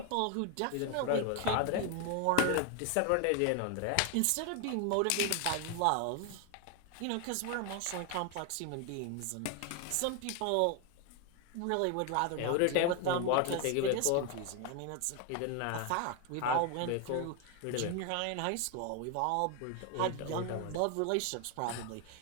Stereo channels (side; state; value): both; different; correlation 0.01